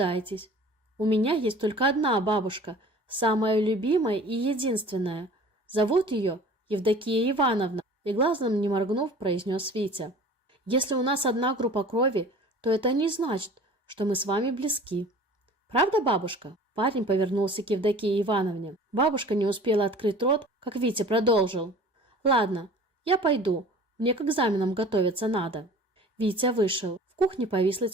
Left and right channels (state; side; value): normal; both; correlation 0.45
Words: У меня есть только одна бабушка, самая любимая и единственная. Зовут ее Евдокия Ивановна, и глазом не моргнув, произнес Витя. Если у нас одна группа крови, то это не значит, что мы с вами близки. Правда, бабушка? Парень повернулся к Евдокии Ивановне. Бабушка не успела открыть рот, как Витя продолжил. Ладно, я пойду. Мне к экзаменам готовиться надо. Витя вышел. В кухне повисла